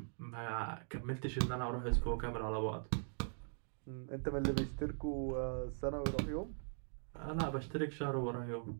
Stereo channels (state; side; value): silent; left; digital silence